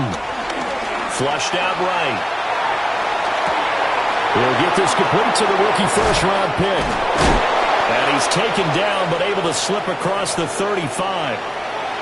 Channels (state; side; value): identical; both; correlation 1.00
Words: Flushed out right. He'll get this complete to the rookie first-round pick. And he's taken down, but able to slip across the 35.